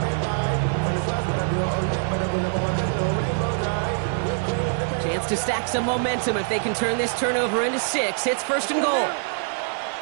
Chance to stack some momentum if they can turn this turnover into 6. It's 1st and goal.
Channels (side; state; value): left; silent; digital silence